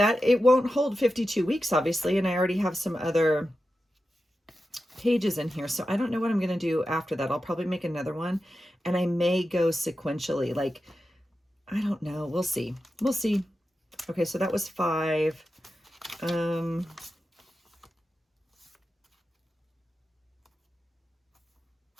It won't hold 52 weeks, obviously, and I already have some other pages in here, so I don't know what I'm going to do after that. I'll probably make another one, and I may go sequentially, like, I don't know. We'll see. We'll see. Okay, so that was 5.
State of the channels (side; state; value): both; normal; correlation 0.91